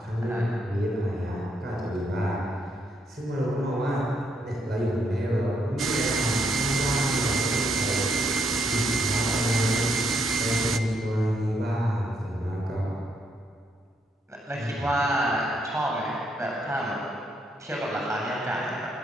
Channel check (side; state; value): both; normal; correlation 0.75